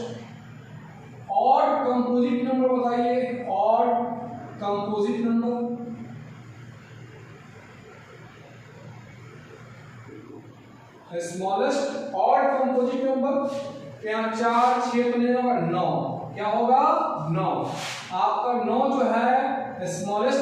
ऑड कंपोजिट नंबर बताइए, odd composite number. Smallest odd composite number यहाँ 4, 6 तो नहीं होगा, 9। क्या होगा, 9। आपका 9 जो है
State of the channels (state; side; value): identical; both; correlation 1.00